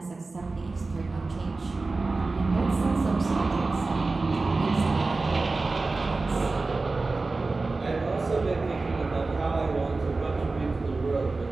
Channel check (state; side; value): quieter; left; 3.6 dB